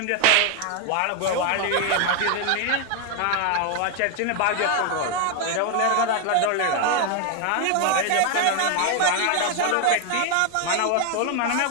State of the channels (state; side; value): different; both; correlation 0.00